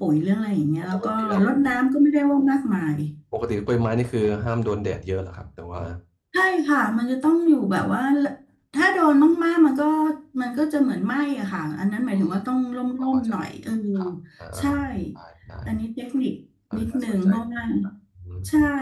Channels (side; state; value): both; identical; correlation 1.00